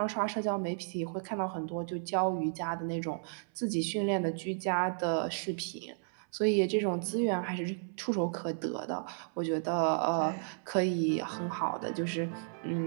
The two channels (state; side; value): silent; left; 56 dB below the other